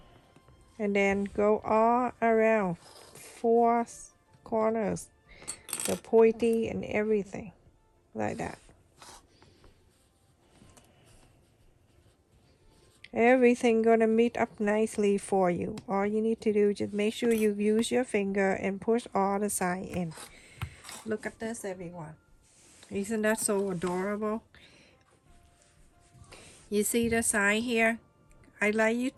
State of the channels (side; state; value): both; identical; correlation 1.00